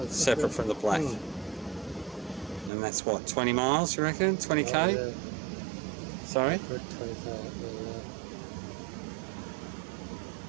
separate from the black. And that's what, 20 miles, you reckon? 20k? Oh, yeah. Sorry? Good 20k,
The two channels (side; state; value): left; drops out; at 2.7 s